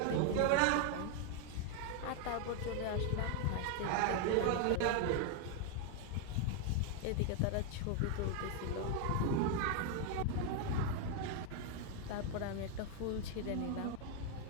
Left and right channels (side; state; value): both; different; correlation 0.00